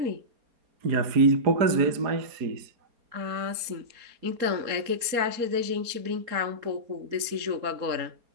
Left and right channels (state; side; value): late; left; 4.3 ms